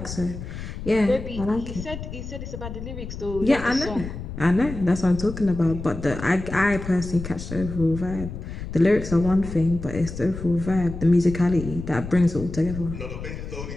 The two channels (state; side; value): noise; left; rumble, 9 dB below the sound